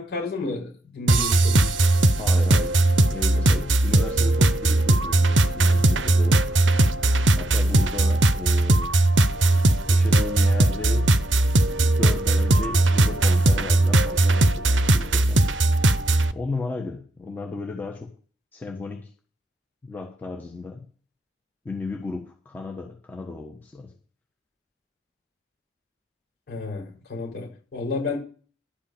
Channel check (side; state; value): both; normal; correlation 0.81